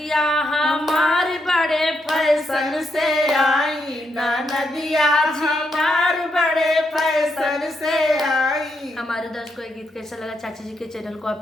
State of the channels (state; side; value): normal; both; correlation 0.80